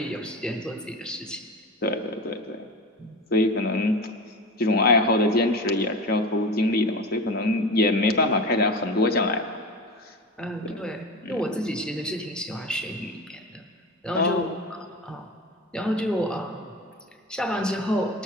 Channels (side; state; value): both; normal; correlation 0.28